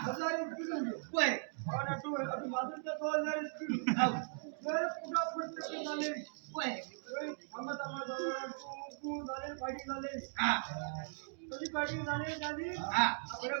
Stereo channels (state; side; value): silent; left; digital silence